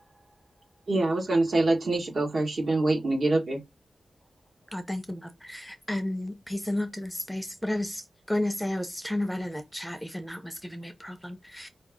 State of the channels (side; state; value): both; normal; correlation 0.96